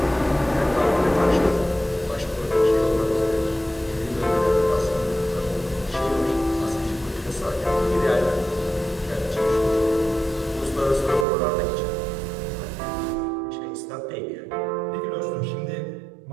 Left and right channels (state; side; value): drops out; left; at 11.2 s